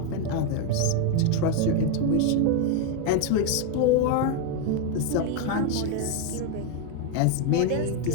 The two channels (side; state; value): both; different; correlation 0.01